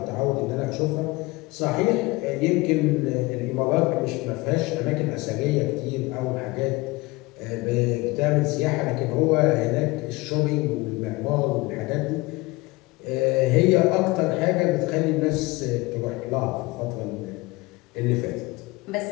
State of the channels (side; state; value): right; quieter; 22.6 dB